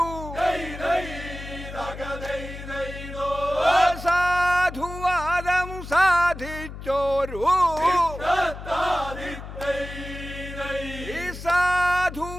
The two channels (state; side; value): noise; left; hum, 11 dB below the sound